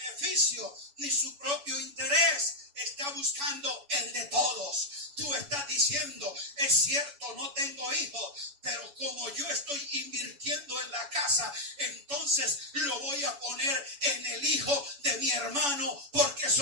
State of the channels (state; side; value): late; left; 7.1 ms